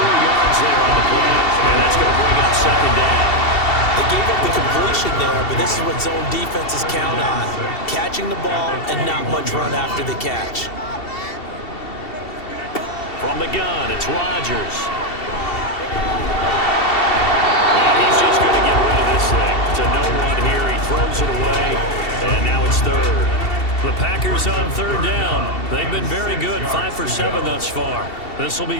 yards there on the play. And that's going to bring up 2nd down. They gave up the completion there, but this is what zone defenses count on. Catching the ball and not much run after the catch. From the gun, it's Rodgers. And he's just going to get rid of this thing. To no one here, he throws it away, and now it's 3rd. The Packers on third down. They've been very good, 5 for 7 thus far. This will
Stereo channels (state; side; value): late; right; 2.7 ms